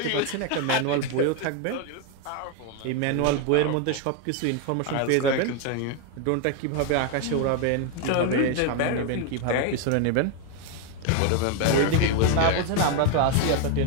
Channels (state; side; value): different; both; correlation 0.01